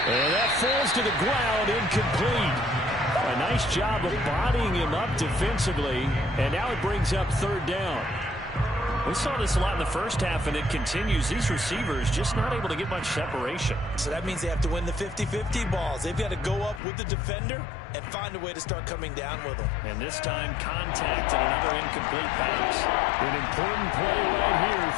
And that falls to the ground, incomplete. A nice job of bodying him up defensively, and now it brings up 3rd down. We saw this a lot in the first half, and it continues. These receivers just not able to get much separation. So that means they have to win the 50-50 balls. They've got to go up with the defender and find a way to start coming down with them. And this time, contact and another incomplete pass. An important play right here,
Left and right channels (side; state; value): right; drops out; at 16.8 s